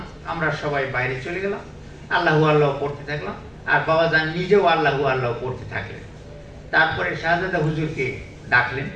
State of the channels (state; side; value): identical; both; correlation 1.00